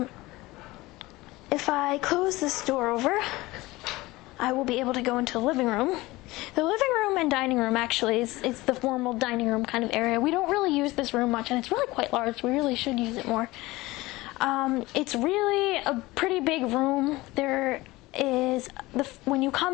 If I close this door over, I will be able to go into the living room. The living room and dining room actually is the formal dining room kind of area. We don't really use this room much, and it's really quite large. We really should use it more. It's really a pretty big room. There is, when you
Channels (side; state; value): right; quieter; 20.0 dB